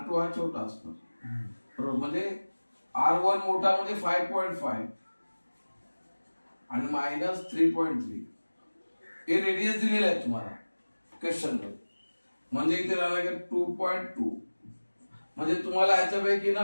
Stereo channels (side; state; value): both; inverted; correlation -1.00